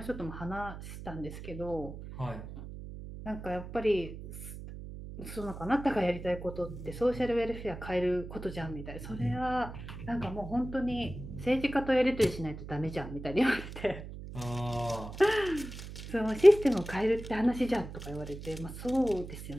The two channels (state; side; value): noise; right; hum, 11 dB below the sound